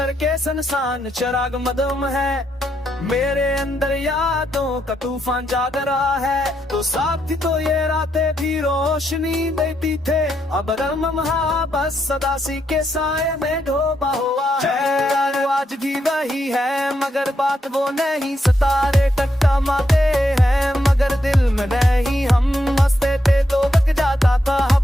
सुनसान चिराग मदम है, मेरे अंदर यादों का तूफान जाग रहा है। तो साथ थी तो ये रातें भी रोशनी देती थे, अब रमहा बस सदासी के साए में डूबा हुआ है। आज भी वही है मगर बात वो नहीं, सितारे टकटमाते हैं मगर दिल में नहीं। हम हंसते थे तो बक जाता था, अब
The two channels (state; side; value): normal; both; correlation 0.79